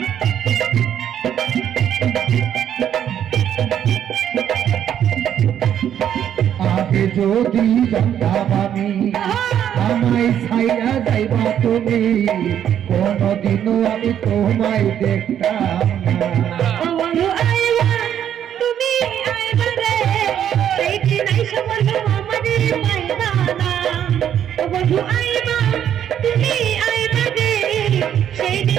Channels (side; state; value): left; quieter; 9.8 dB